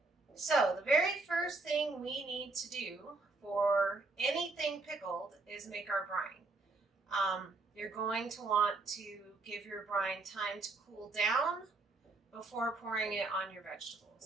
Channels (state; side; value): quieter; left; 3.5 dB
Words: So the very first thing we need to do for anything pickled is make our brine. You're going to want to give your brine time to cool down before pouring it on your